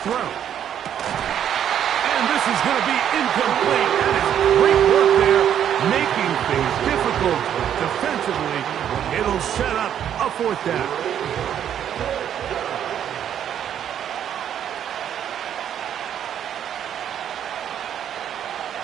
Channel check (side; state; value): left; quieter; 9.6 dB